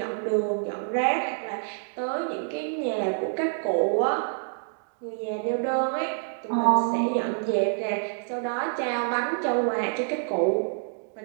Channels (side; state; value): left; silent; digital silence